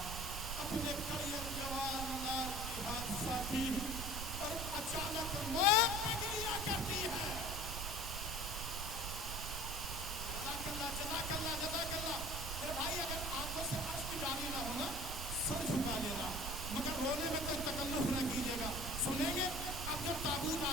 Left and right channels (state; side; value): noise; right; rumble, 5 dB below the sound